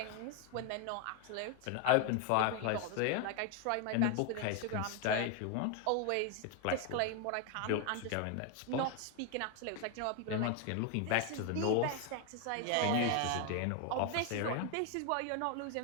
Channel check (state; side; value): different; both; correlation 0.01